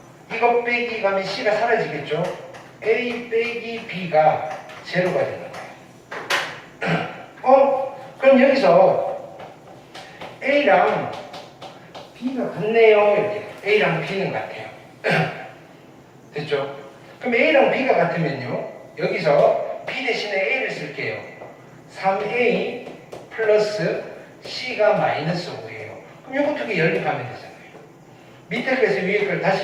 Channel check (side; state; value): both; identical; correlation 1.00